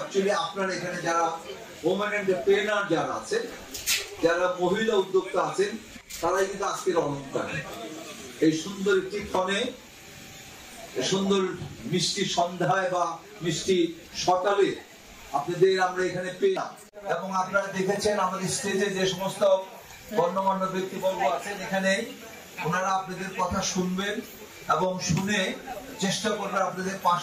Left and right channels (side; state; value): both; identical; correlation 1.00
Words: আপনারা এখানে যারা ওমেন এন্টারপ্রেনার যারা আছেন, যারা মহিলা উদ্যোক্তা আছেন, তারাই কিন্তু আজকের অলংকার। এই সুন্দর একটি ক্ষণে, সুন্দর মিষ্টি সন্ধ্যায় বা মিষ্টি সকালে আপনাদের আমরা এখানে পেলাম এবং আপনারা দেখেছেন আমাদের স্টেজে যে সমস্ত গণ্যমান্য ব্যক্তিবর্গ আছেন, এখানে ওনারা আপনাদের কথা শুনবেন এবং শুনে চেষ্টা করবেন আপনাদের